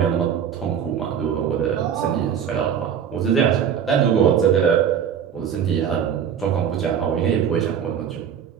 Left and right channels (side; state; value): left; quieter; 8.3 dB